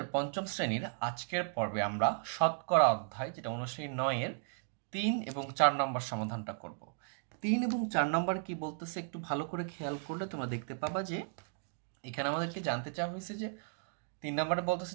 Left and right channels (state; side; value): silent; left; digital silence